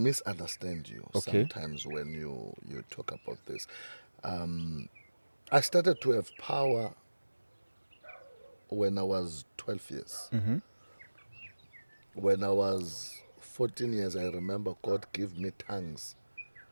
you Okay. sometimes when you talk about this. I started to have power when I was 12 years. Mm-hmm. When I was 14 years, I remember God gave me tongues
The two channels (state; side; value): inverted; both; correlation -1.00